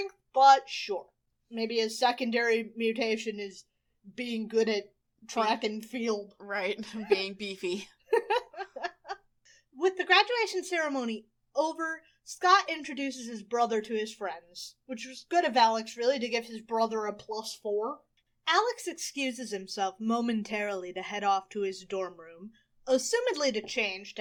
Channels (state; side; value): identical; both; correlation 1.00